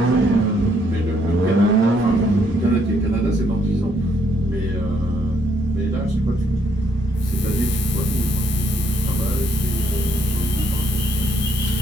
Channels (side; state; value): both; normal; correlation 0.71